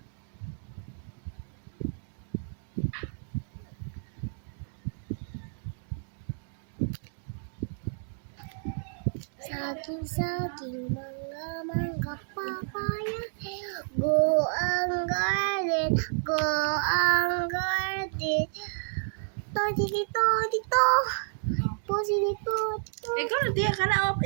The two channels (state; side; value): silent; left; digital silence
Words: Saging, saging, mangga, mangga, papaya. Go ang garden, go ang garden. Todi dito, dito. Posi dito, dito. Ikaw na tiya ka na.